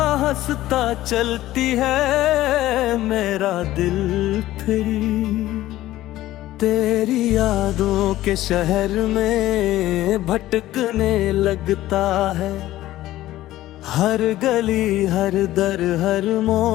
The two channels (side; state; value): right; quieter; 15.2 dB